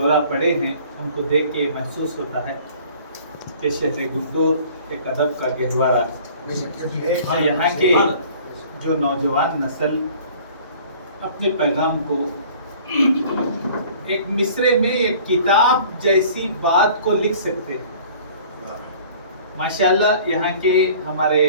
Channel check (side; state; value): both; inverted; correlation -0.50